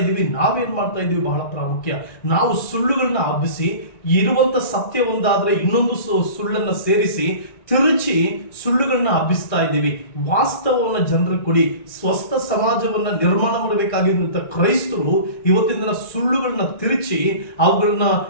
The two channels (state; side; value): late; right; 1.9 ms